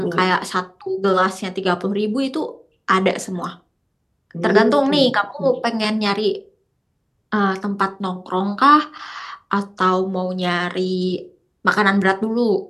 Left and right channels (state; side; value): identical; both; correlation 1.00